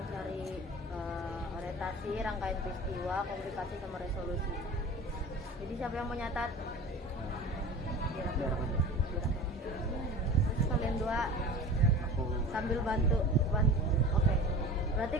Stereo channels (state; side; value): normal; both; correlation 0.36